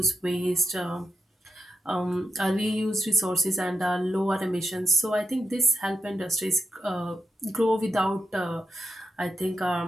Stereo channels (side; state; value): both; normal; correlation 0.85